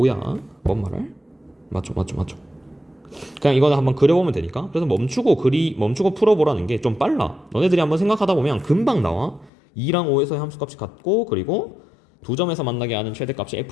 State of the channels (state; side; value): drops out; right; at 9.5 s